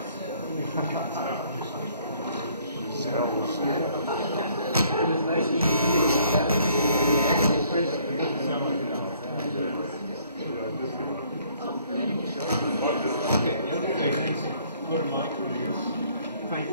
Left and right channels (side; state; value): both; inverted; correlation -0.62